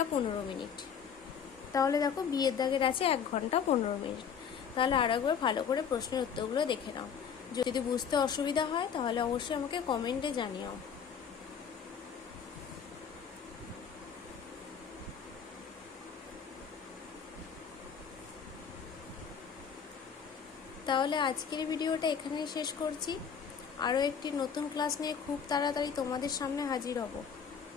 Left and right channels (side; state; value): right; quieter; 7.1 dB